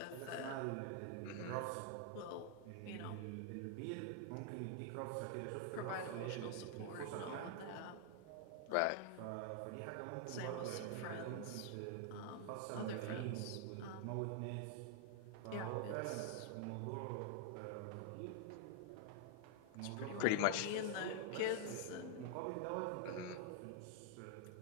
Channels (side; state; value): both; different; correlation 0.00